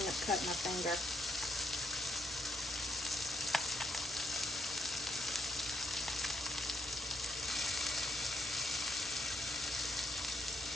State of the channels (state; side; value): normal; both; correlation 0.76